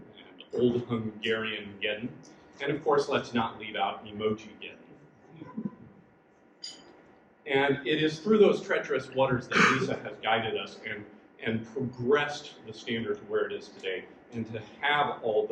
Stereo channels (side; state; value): both; identical; correlation 1.00